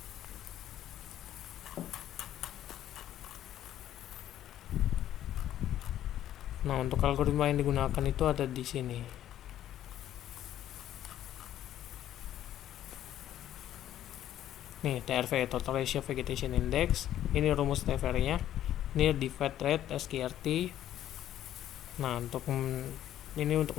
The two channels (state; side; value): quieter; right; 12.0 dB